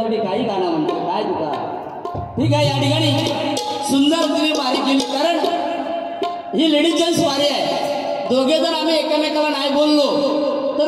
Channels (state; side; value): identical; both; correlation 1.00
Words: काही गाणं म्हणतो काय तुका. ठीक आहे या ठिकाणी सुंदर तुम्ही वारी केली कारण ही लेडीज जेंट्स वारी आहे. दोघे जर आम्ही एकमेकाला नाही बोललो